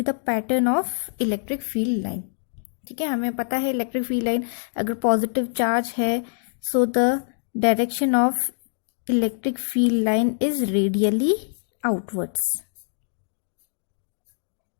the pattern of electric field line? ठीक है, हमें पता है इलेक्ट्रिक फील्ड लाइन अगर पॉजिटिव चार्ज है, so the direction of electric field line is radially outwards.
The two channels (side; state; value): right; silent; digital silence